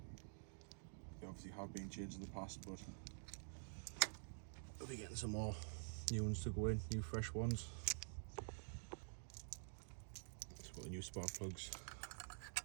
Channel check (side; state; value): left; silent; digital silence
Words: They obviously have been changed in the past, but we'll be getting some more new ones to go in, new fresh ones. Let's put the new spark plugs